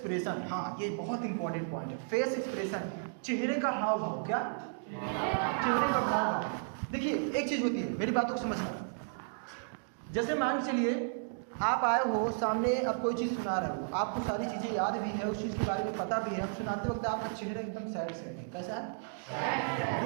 हाँ ये बहुत इंपॉर्टेंट पॉइंट है, फेस एक्सप्रेशन, चेहरे का हाव भाव। क्या? चेहरे का हाव भाव। देखिए एक चीज़ होती है, मेरी बातों को समझना। जैसे मान चलिए आप आए हो सामने, अब कोई चीज़ सुना रहे हो, आपको सारी चीज़ें याद भी है, उस चीज़ के बारे में पता भी है, अब सुनाते वक्त आपका चेहरा एकदम सैड है। कैसा है?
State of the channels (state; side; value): silent; left; digital silence